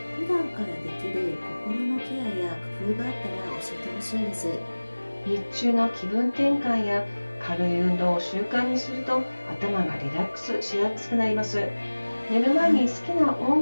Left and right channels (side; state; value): both; inverted; correlation -1.00